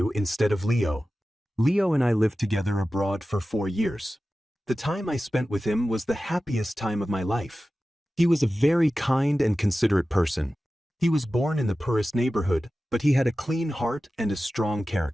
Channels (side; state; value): both; normal; correlation 0.95